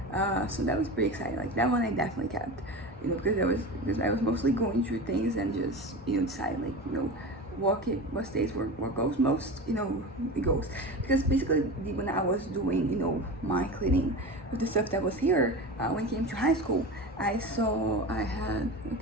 So that was pretty exciting. Like that one I definitely kept, because I was mostly going through things and just decide like what stays, what goes most, it goes. Because basically when I was doing my cleaning with the stuff that was here, when it came to high school, I had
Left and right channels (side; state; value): both; normal; correlation 0.28